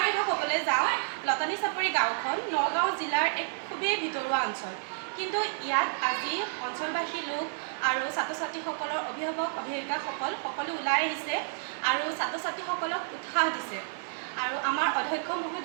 কথা ক'বলৈ যাওঁ, লতানী চাপৰি গাঁওখন নগাঁও জিলাৰ এক খুবেই ভিতৰুৱা অঞ্চল, কিন্তু ইয়াত আজি অঞ্চলবাসী লোক আৰু ছাত্ৰ ছাত্ৰীসকলৰ অভিভাৱক অভিভাৱিকাসকল সকলো ওলাই আহিছে আৰু ছাত্ৰ ছাত্ৰীসকলক উৎসাহ দিছে। আৰু আমাৰ অধ্যক্ষ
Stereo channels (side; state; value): left; silent; digital silence